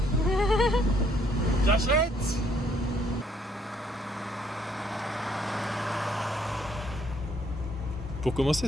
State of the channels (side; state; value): both; normal; correlation 0.67